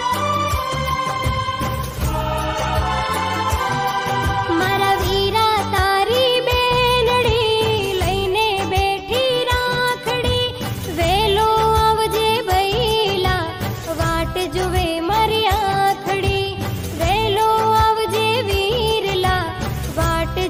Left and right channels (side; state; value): both; identical; correlation 1.00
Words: मारा वीरा तारी बेनड़ी लईने बेठी राखड़ी, वेलो आवजे भैला वाट जुवे मारी आखड़ी, वेलो आवजे वीरला वाट